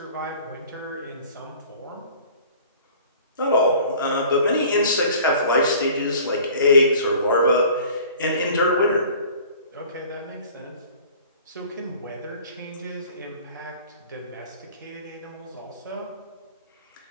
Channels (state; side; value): inverted; both; correlation -0.48